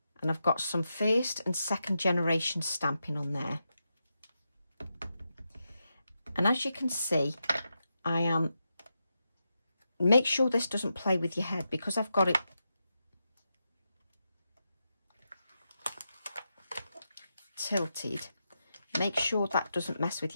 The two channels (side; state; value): both; inverted; correlation -0.87